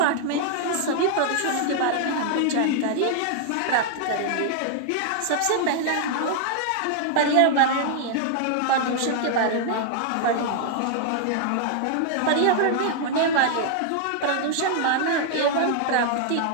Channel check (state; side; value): different; both; correlation 0.00